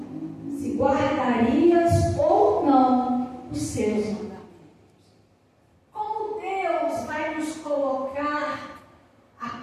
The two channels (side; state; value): both; identical; correlation 1.00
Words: se guardarias ou não os seus mandamentos. Como Deus vai nos colocar à